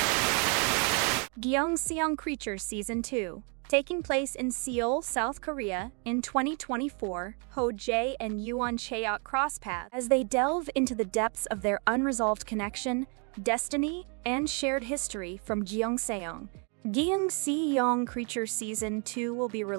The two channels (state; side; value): quieter; left; 37.0 dB